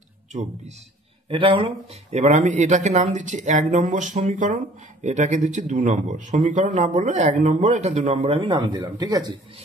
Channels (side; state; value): both; normal; correlation 0.53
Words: এটা হলো। এবার আমি এটাকে নাম দিচ্ছি 1 নম্বর সমীকরণ, এটাকে দিচ্ছি 2 নম্বর সমীকরণ, না বললে 1 নম্বর, এটা 2 নম্বর আমি নাম দিলাম। ঠিক আছে,